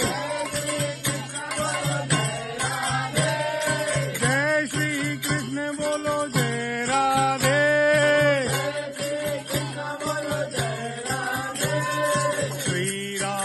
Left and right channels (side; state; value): both; identical; correlation 1.00